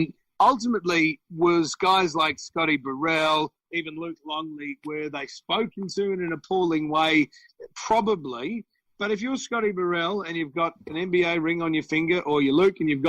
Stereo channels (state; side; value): identical; both; correlation 1.00